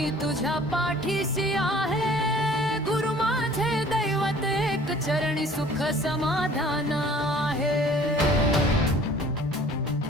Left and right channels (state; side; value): normal; both; correlation 0.51